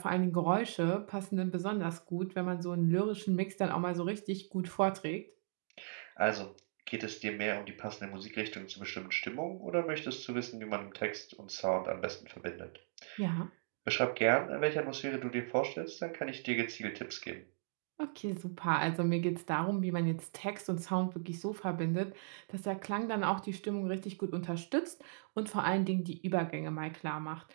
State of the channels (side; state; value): left; silent; digital silence